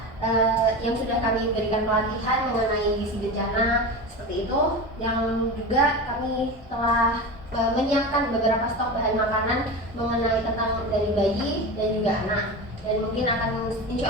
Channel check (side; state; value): both; normal; correlation 0.26